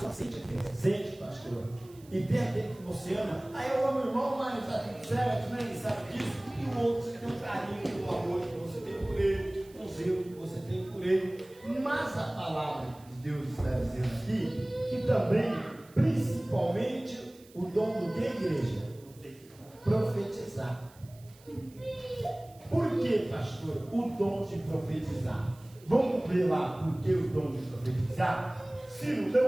sente, pastor. E tem aquele que você ama, aí eu amo o irmão, mas está tudo certo, né? Ele sabe disso. E o outro, você tem um carinho, um amor que você tem por ele, um zelo que você tem por ele. Mas a palavra de Deus está dizendo aqui que também, principalmente, o dom do que, igreja? Profetizar. Por que, pastor, o dom de profetizar? Vamos ver lá por que o dom de profetizar? Ciro,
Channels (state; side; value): noise; right; hiss, 26 dB below the sound